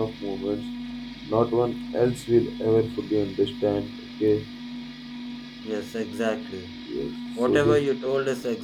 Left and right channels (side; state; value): both; identical; correlation 1.00